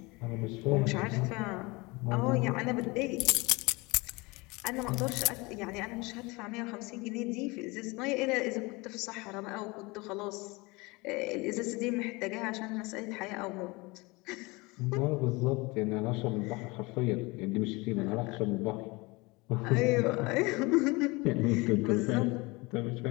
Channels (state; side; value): quieter; right; 24.7 dB